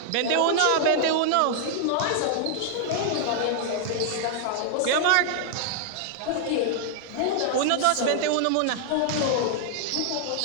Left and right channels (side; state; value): both; different; correlation -0.01